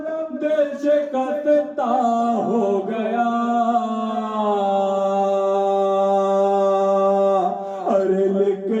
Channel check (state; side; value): identical; both; correlation 1.00